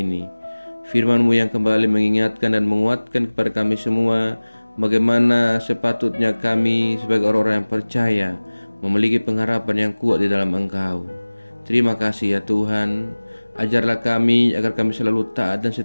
Firman-Mu yang kembali mengingatkan dan menguatkan kepada kami semua bagaimana sepatutnya kami sebagai orang-orang yang percaya memiliki pengharapan yang kuat di dalam Engkau. Terima kasih ya Tuhan. Ajarlah kami agar kami selalu taat dan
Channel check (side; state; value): both; inverted; correlation -1.00